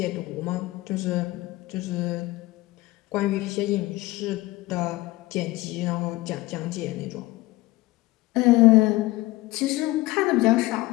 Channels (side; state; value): right; quieter; 19.4 dB